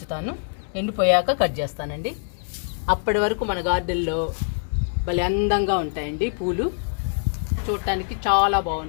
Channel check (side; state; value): right; silent; 61 dB below the other